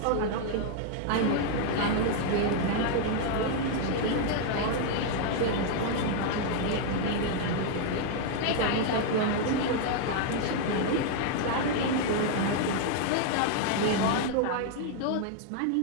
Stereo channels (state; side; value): different; both; correlation 0.00